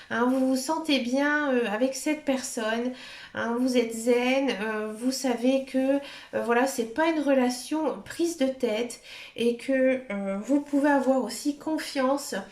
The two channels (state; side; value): identical; both; correlation 1.00